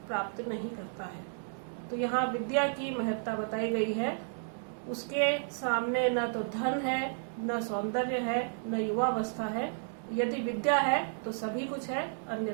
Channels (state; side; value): silent; left; digital silence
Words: प्राप्त नहीं करता है। तो यहाँ विद्या की महत्ता बताई गई है। उसके सामने न तो धन है, न सौंदर्य है, न युवावस्था है। यदि विद्या है तो सभी कुछ है,